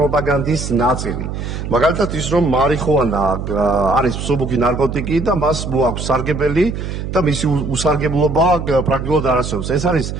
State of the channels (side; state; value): right; noise; hum, 5 dB below the sound